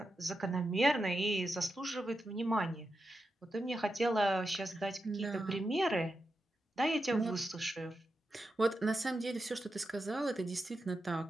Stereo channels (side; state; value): both; normal; correlation 0.88